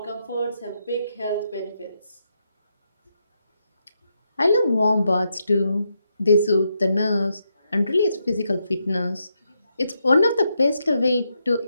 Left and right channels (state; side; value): inverted; both; correlation -0.81